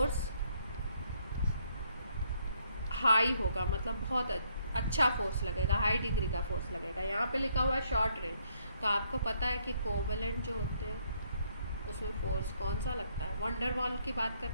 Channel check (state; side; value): inverted; both; correlation -0.69